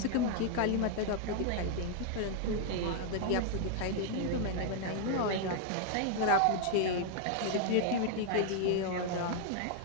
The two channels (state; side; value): different; both; correlation 0.00